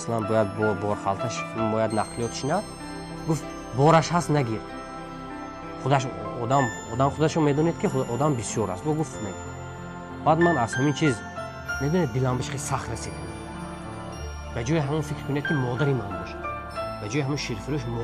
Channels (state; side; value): identical; both; correlation 1.00